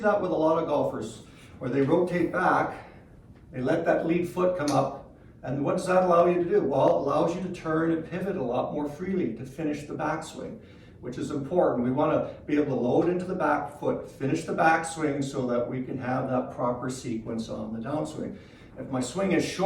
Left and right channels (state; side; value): identical; both; correlation 1.00